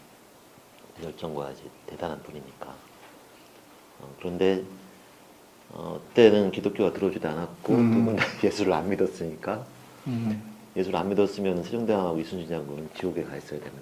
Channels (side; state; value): both; identical; correlation 1.00